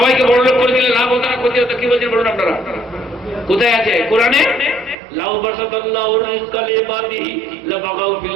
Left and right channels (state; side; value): drops out; left; at 5.0 s